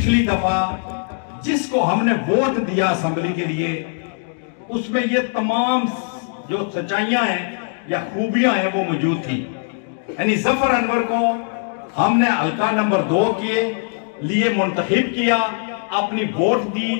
दफा जिसको हमने वोट दिया असेंबली के लिए, उसमें ये तमाम जो सच्चाइयां हैं या खूबियां हैं वो मौजूद थी। यानी ज़फ़र अनवर को हमने हल्का नंबर 2 के लिए मुंतखब किया, अपनी वोट दी।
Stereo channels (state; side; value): silent; right; 63 dB below the other